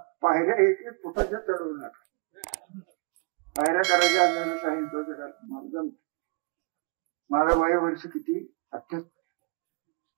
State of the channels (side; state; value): left; quieter; 31.4 dB